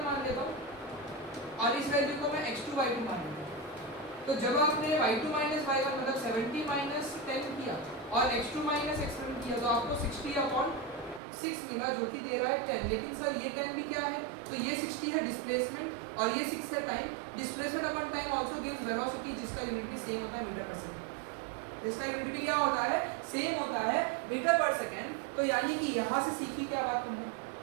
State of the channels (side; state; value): left; drops out; at 11.2 s